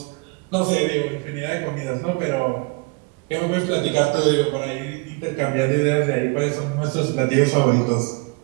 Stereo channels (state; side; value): quieter; left; 30.0 dB